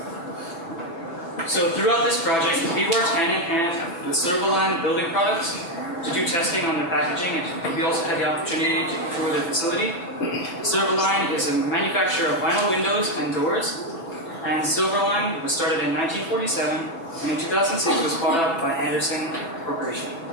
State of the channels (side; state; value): right; late; 6.0 ms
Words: So throughout this project, we worked hand in hand with Silverline Building Products to do testing on the packaging, and we also had the opportunity to tour the facility. Silverline is a manufacturer of vinyl windows and doors, and Silverline was started in 1947, and in 2006 was bought out by Anderson Corporation.